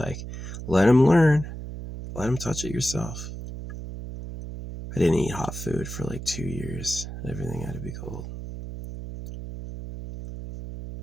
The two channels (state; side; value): noise; right; hum, 9 dB below the sound